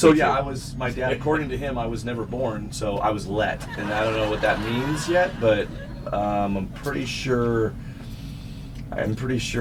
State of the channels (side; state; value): both; identical; correlation 1.00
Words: my dad, according to him, I was never born, so I was let. And I don't know what that means yet, but I'm pretty sure